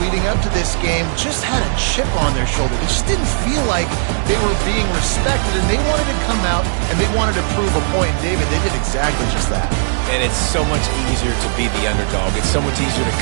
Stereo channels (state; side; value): silent; left; digital silence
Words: leading up to this game just had a chip on their shoulder. They just didn't feel like they were being respected, and they wanted to come out, and they wanted to prove a point. And David, they did exactly just that. And it's so much easier to be the underdog. It's so much easier to